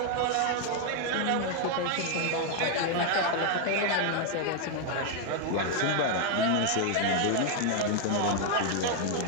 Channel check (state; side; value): different; both; correlation 0.00